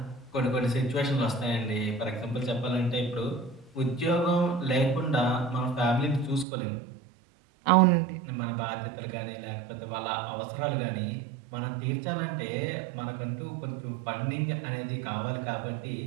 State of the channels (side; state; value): left; drops out; at 6.5 s